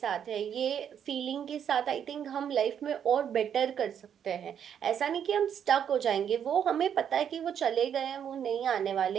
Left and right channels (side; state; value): left; quieter; 8.7 dB